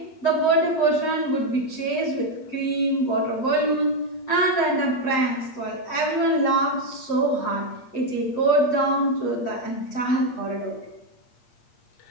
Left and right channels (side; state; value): right; late; 8.5 ms